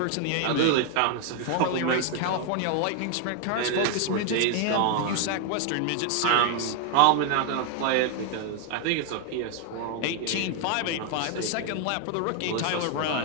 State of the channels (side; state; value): both; different; correlation 0.00